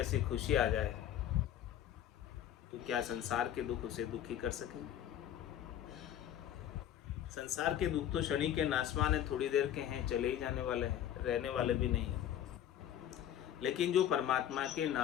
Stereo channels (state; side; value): quieter; right; 10.8 dB